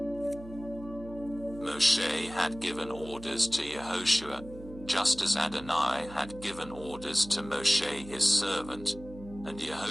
Moshe had given orders to Yehoshua, just as Adonai had given orders to Moshe his servant, and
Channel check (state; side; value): noise; right; hum, 16 dB below the sound